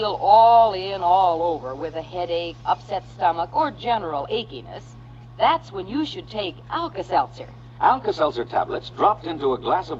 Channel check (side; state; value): both; identical; correlation 1.00